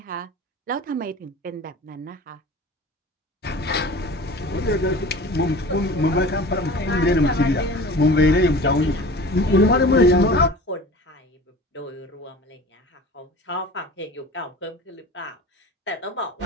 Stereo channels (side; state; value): both; normal; correlation 0.39